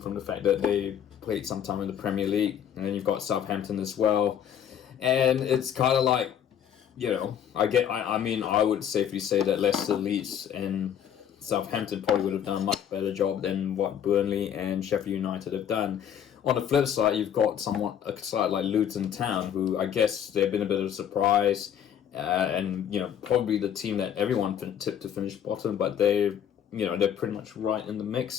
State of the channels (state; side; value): quieter; right; 9.2 dB